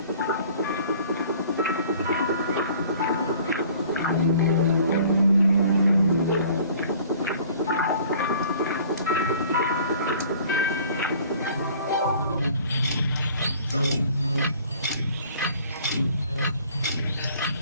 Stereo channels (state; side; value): inverted; both; correlation -0.52